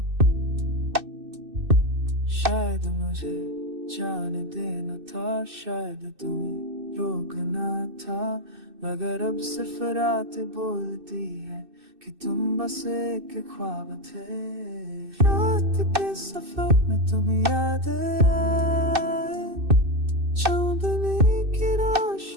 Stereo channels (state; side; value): late; left; 2.6 ms